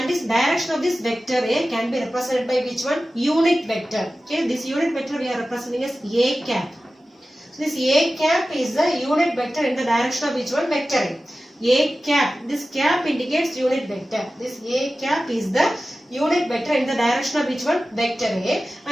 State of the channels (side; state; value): both; normal; correlation 0.95